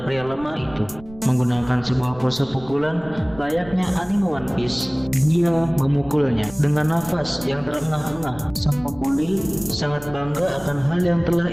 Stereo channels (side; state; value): right; noise; rumble, 19 dB below the sound